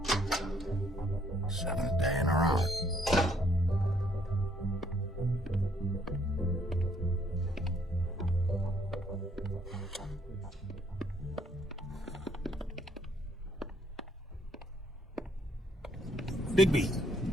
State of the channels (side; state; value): both; normal; correlation 0.67